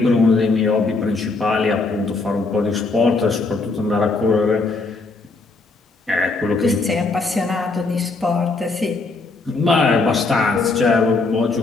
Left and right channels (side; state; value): right; quieter; 3.7 dB